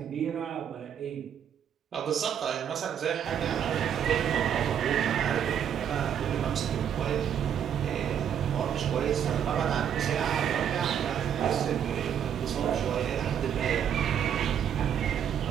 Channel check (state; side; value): quieter; left; 8.9 dB